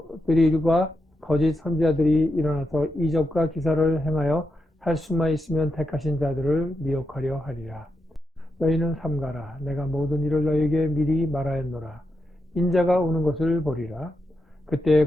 거짓 선지자들이 일어나서 이적과 기사를 행하여 할 수만 있으면 택하신 자들을 미혹하려 하리라. 너희는 삼가라. 내가 모든 일을 너희에게 미리 말하였노라. 인자가 오는 것을 보리라. 그때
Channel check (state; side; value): normal; both; correlation 0.85